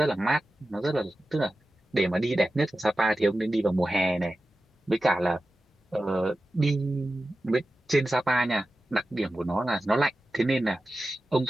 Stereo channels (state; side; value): normal; both; correlation 0.94